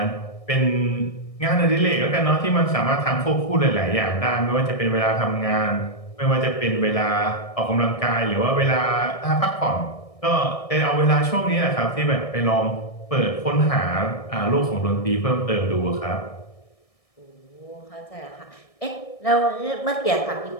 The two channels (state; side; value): late; right; 1.6 ms